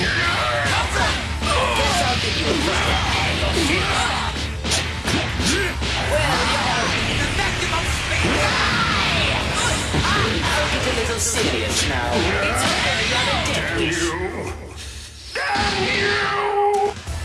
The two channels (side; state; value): both; identical; correlation 1.00